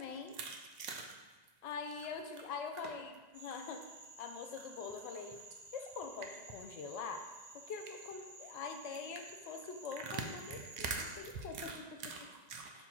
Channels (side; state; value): left; late; 2.2 ms